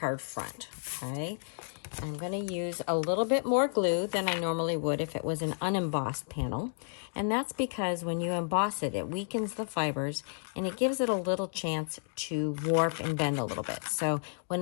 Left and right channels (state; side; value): silent; right; digital silence